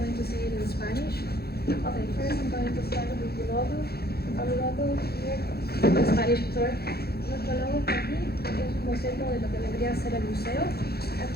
to say it in Spanish. Okay, first I'm going to start with the logo. Our logo here, the Spanish tour. Nuestro logo está aquí, es un boceto de lo que vendría a ser el museo.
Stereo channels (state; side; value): late; right; 0.46 ms